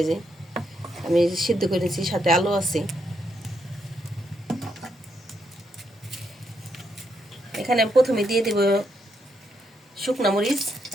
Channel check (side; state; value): both; normal; correlation 0.79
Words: এই যে আমি সিদ্ধ করে নিছি, সাথে আলু আছে। এখানে আমি প্রথমে দিয়ে দেব শুকনা মরিচ